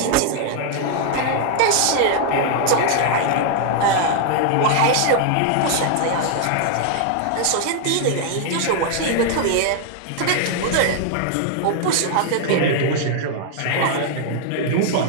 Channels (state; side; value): different; both; correlation 0.00